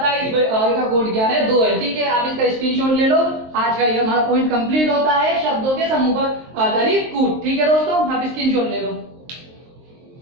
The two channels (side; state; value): left; late; 23 ms